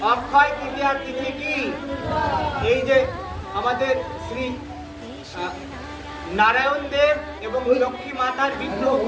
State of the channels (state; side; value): identical; both; correlation 1.00